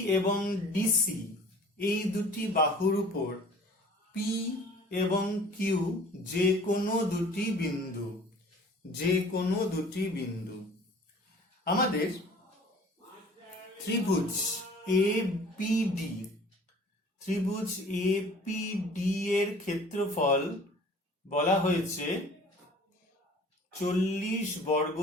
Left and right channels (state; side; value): normal; both; correlation 0.48